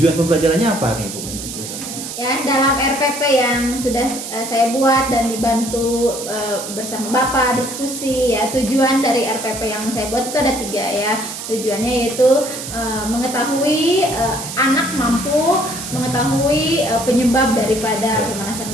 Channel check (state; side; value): noise; right; hiss, 8 dB below the sound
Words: pembelajarannya apa nih Bu? Ya, dalam RPP yang sudah saya buat dan dibantu bersama Bapak diskusi ya, tujuan dari RPP yang saya buat itu ada 3 ya. Tujuannya yaitu mengetahui anak mampu mengetahui penyebab daripada pemanasan